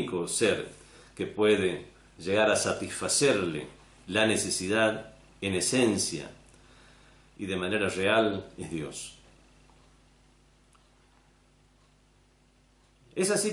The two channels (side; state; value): both; identical; correlation 1.00